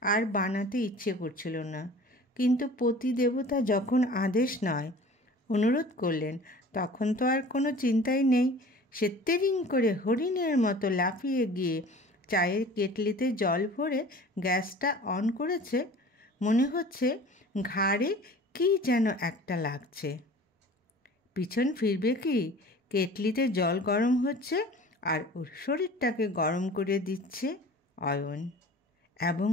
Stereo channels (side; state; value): both; normal; correlation 0.43